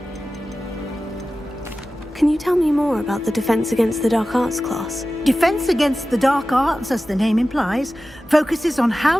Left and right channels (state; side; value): normal; both; correlation 0.95